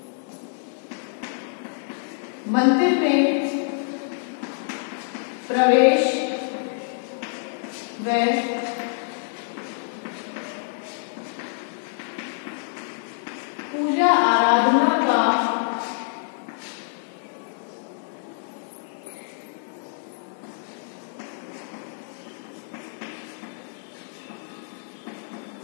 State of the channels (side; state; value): right; silent; 61 dB below the other